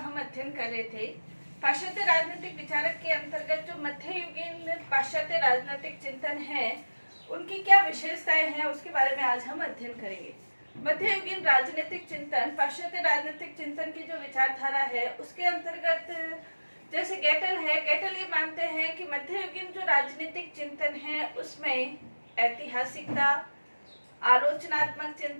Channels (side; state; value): both; inverted; correlation -1.00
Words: अध्ययन कर रहे थे। पाश्चात्य राजनीतिक विचारक के अंतर्गत जो मध्ययुगीन पाश्चात्य राजनीतिक चिंतन है, उनकी क्या विशेषताएं हैं, उसके बारे में आज हम अध्ययन करेंगे। मध्ययुगीन राजनीतिक चिंतन, पाश्चात्य राजनीतिक चिंतन की जो विचारधारा है, उसके अंतर्गत जैसे गेटल है, गेटल ये मानते हैं कि मध्ययुगीन जो राजनीतिक चिंतन है उसमें ऐतिहासिकता, आलोचनात्मक